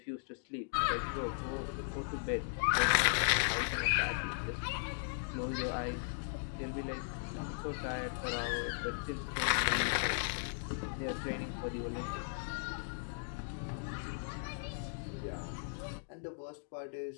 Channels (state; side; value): silent; right; digital silence